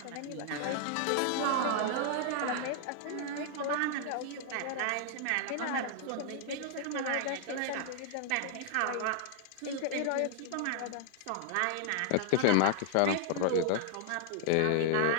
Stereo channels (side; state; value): both; different; correlation -0.01